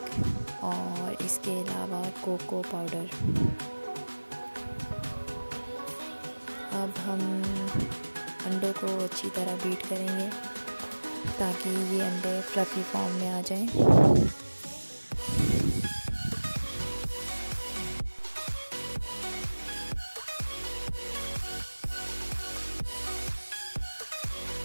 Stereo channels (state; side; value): inverted; both; correlation -1.00